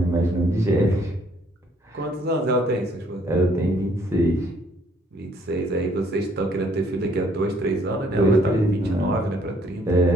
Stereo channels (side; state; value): both; normal; correlation 0.64